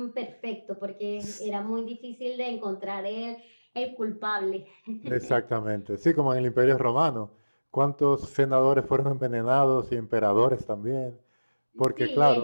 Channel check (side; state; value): both; inverted; correlation -1.00